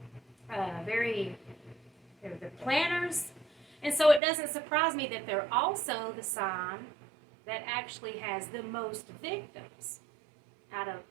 planners. And so it doesn't surprise me that they're also the sign that actually has the most victims out of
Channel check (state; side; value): drops out; left; at 4.2 s